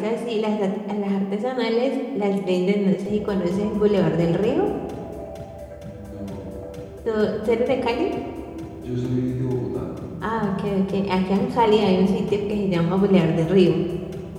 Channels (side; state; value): both; identical; correlation 1.00